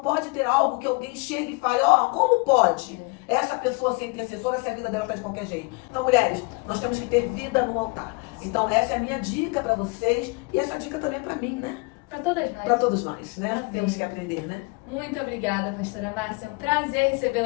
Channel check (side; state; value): right; quieter; 29.1 dB